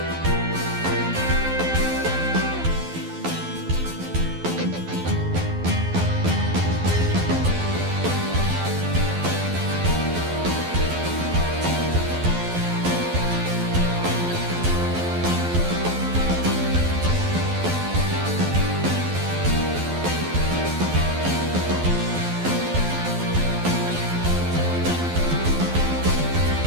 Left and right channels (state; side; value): late; left; 12 ms